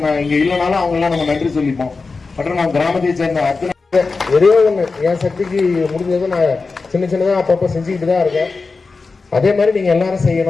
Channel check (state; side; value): quieter; right; 4.2 dB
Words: இங்க இல்லைனாலும் அவங்க எல்லாம் நம்ம நன்றி சொல்லிப்போம். மற்றும் நம்ம கிராமத்தை சேர்ந்த அத்தனை ஒரே ஒண்ணு, என் சக்திக்கு முடிஞ்சதை நான் சின்ன சின்னதா அப்பப்ப செஞ்சுக்கிட்டு தான் இருக்கேன். அதே மாதிரி நீங்க எல்லாரும்